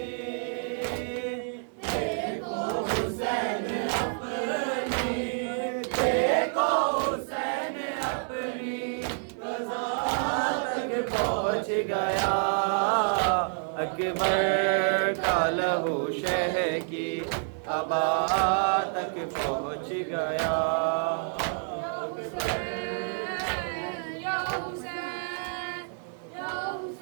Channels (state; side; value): silent; left; 57 dB below the other